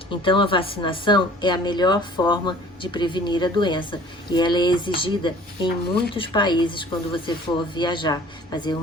Então, a vacinação é a melhor forma de prevenir a doença e ela é exigida em muitos países quando você for viajar, fazer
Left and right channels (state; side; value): normal; both; correlation 0.50